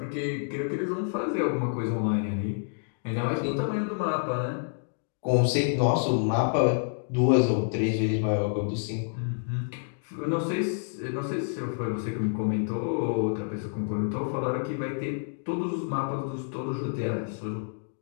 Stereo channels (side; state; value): right; silent; digital silence